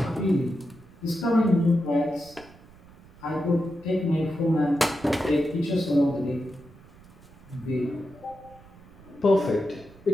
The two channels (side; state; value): right; noise; rumble, 23 dB below the sound